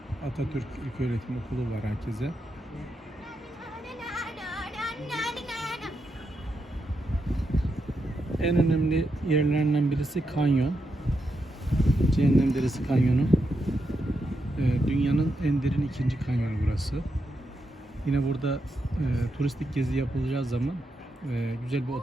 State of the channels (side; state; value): both; normal; correlation 0.84